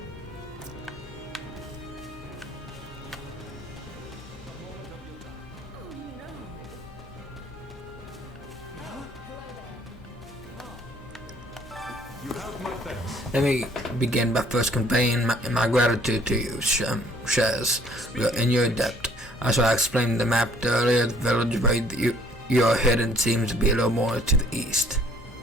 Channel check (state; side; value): normal; both; correlation 0.59